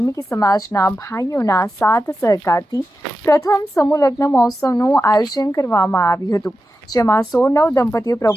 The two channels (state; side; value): normal; both; correlation 0.91